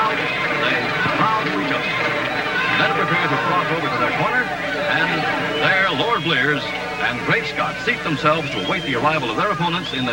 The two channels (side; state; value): both; identical; correlation 1.00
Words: they bow to each other. Then prepare to cross over to their corner. And there, Lord Blears and Great Scott seat themselves to await the arrival of their opponents in